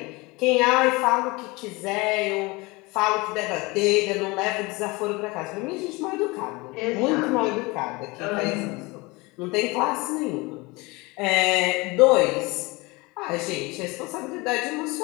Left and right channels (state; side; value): quieter; right; 24.3 dB